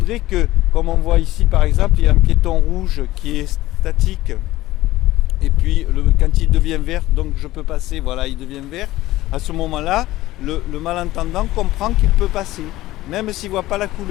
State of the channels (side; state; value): right; quieter; 16.7 dB